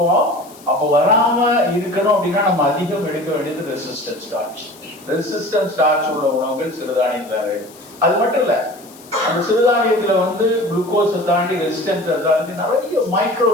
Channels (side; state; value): left; noise; hiss, 23 dB below the sound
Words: அப்போ வராம இருக்கணும் அப்படின்னா நம்ம அதிகம் எடுக்க வேண்டியது ரெசிஸ்டன்ட் ஸ்டார்ச். ரெசிஸ்டன்ட் ஸ்டார்ச் உள்ள உணவுகள் சிறுதானியத்துல. அது மட்டும் இல்ல, அந்த சிறுதானியத்துல குளுக்கோஸை தாண்டி ரெசிஸ்டன்ஸை தாண்டி நிறைய மைக்ரோ